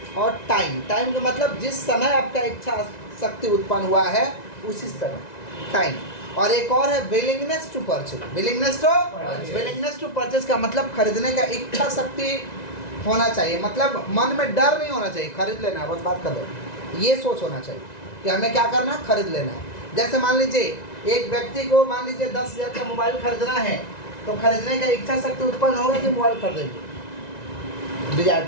और टाइम। टाइम का मतलब जिस समय आपका इच्छा शक्ति उत्पन्न हुआ है उसी समय, टाइम। और एक और है willingness to purchase. Willingness to purchase का मतलब खरीदने का इच्छा शक्ति होना चाहिए। मतलब मन में डर नहीं होना चाहिए, खरीद लेना है बस, बात कर लो। ये सोच होना चाहिए कि हमें क्या करना है? खरीद लेना है। जैसे मान लीजिए एक व्यक्ति को मान लीजिए 10,000 का मोबाइल खरीदना है, तो खरीदने का इच्छा शक्ति उत्पन्न होगा कि मोबाइल खरीदेंगे। डिजायर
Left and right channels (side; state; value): right; late; 1.9 ms